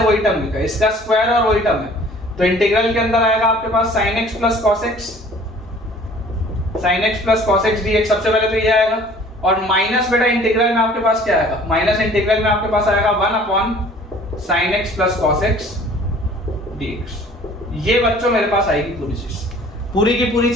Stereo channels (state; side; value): normal; both; correlation 0.51